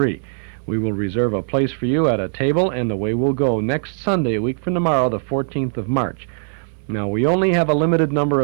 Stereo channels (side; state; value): left; silent; digital silence